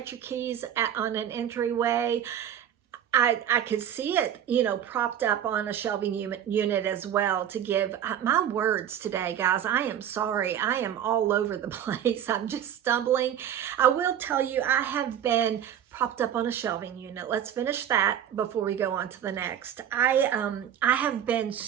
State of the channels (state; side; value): quieter; left; 9.8 dB